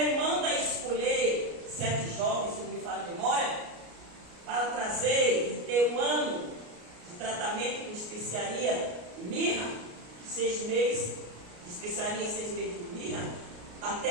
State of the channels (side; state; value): left; late; 33 ms